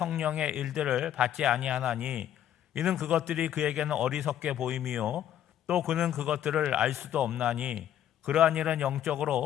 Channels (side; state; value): right; quieter; 10.9 dB